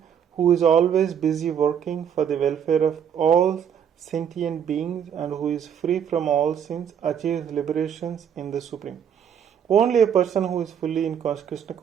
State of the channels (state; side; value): quieter; left; 8.4 dB